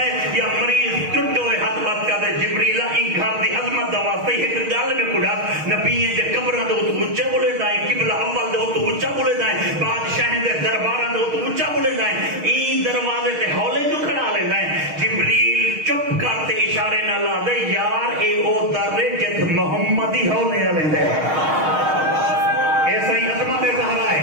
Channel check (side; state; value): left; late; 6.4 ms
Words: یا مریض ٹوٹے ہوئے ہاتھ بات کرتے جبریل ای گھر دی عظمت دا واسطے ایک گال میں کھڑا نبییں دے قبرہ دے تو اونچا بولے دائیں قبلہ اول دے تو اونچا بولے دائیں بادشاہ دے دربارہ دے تو اونچا بولے دائیں ای دروازے تے ہولے جو کھڑا لے دائیں جبریل چپ کرتے اشارے نہ لا دے یار اے او در جت محمدی ہولے لے دے ایسا ہی عظمت زہرا ہے